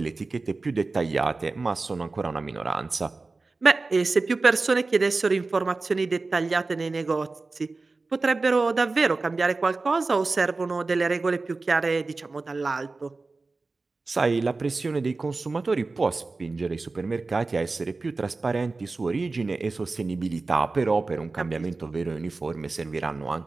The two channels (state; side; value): quieter; left; 3.7 dB